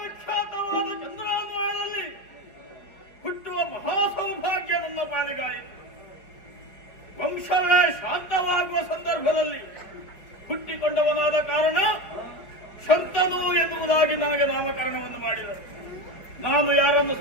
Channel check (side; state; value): right; late; 5.1 ms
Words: ಚಂದ್ರಾನ್ವಯದಲ್ಲಿ ಹುಟ್ಟುವ ಮಹಾಸೌಭಾಗ್ಯ ನನ್ನ ಪಾಲಿಗಾಯಿತು. ವಂಶವೇ ಶಾಂತವಾಗುವ ಸಂದರ್ಭದಲ್ಲಿ ಹುಟ್ಟಿಕೊಂಡವನಾದ ಕಾರಣ ಶಂತನು ಎನ್ನುವುದಾಗಿ ನನಗೆ ನಾಮಕರಣವನ್ನು ಮಾಡಿದರು. ನಾನು ಯಾರನ್ನು